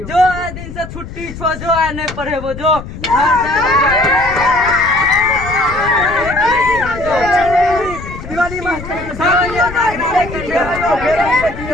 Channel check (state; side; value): noise; left; rumble, 11 dB below the sound